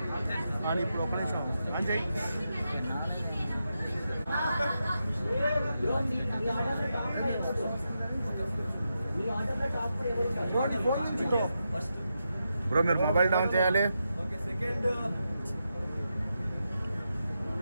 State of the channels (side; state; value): both; inverted; correlation -0.86